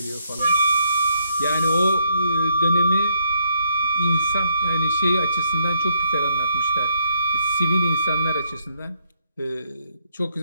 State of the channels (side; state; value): both; inverted; correlation -0.74